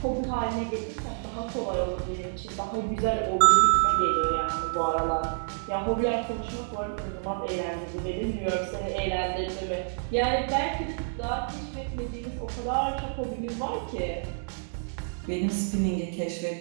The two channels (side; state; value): left; silent; digital silence